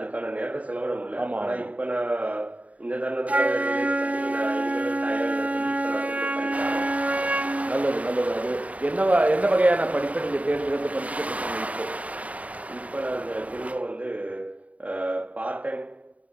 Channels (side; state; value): left; late; 0.069 ms